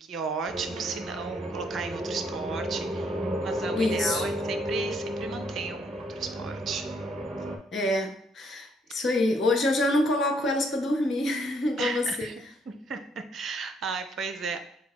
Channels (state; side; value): normal; both; correlation 0.70